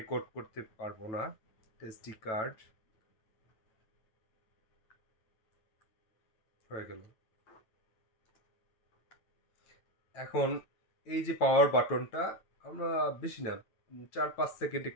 করতে পারবো না। এসডি কার্ড হয়ে গেল। এখন এই যে পাওয়ার বাটনটা, আমরা বেশি না, 4-5 সেকেন্ড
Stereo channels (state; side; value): late; right; 9.1 ms